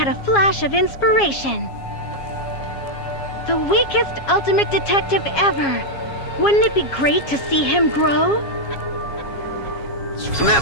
a flash of inspiration. The weakest ultimate detective ever. Wouldn't it be great to see him grow? And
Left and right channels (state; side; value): late; right; 7.3 ms